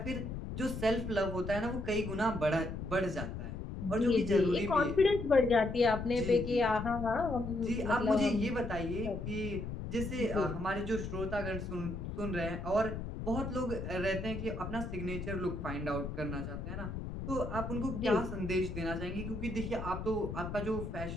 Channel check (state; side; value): noise; left; rumble, 6 dB below the sound